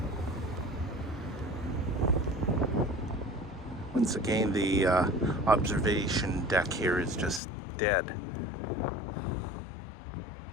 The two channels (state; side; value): drops out; right; at 7.4 s